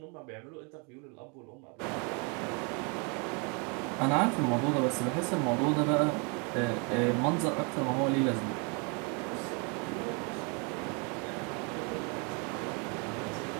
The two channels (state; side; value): quieter; left; 34.1 dB